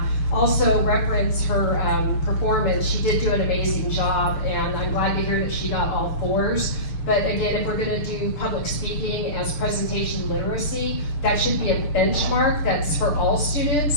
Also reference her performance. She did do an amazing job, and I'm glad to hear that she got all 4s. But again, if we're gonna do public speaking as presentation literacy, that should be a benchmark that's for all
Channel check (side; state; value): right; late; 6.7 ms